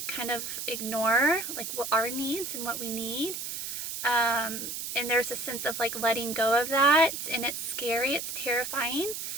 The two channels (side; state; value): right; noise; hiss, 5 dB below the sound